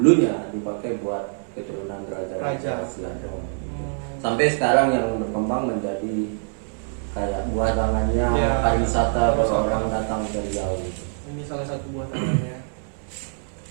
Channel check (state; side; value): silent; left; digital silence